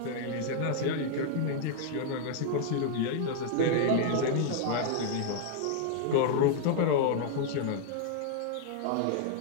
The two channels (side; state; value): both; different; correlation -0.01